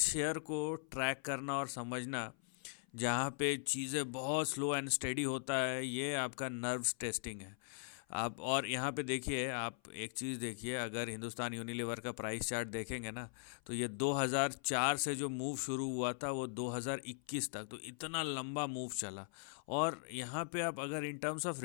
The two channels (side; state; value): right; silent; 51 dB below the other